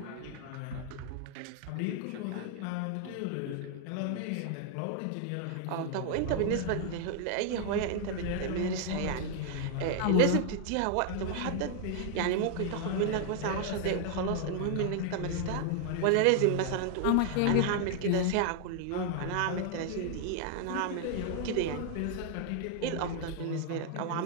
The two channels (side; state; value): both; different; correlation 0.00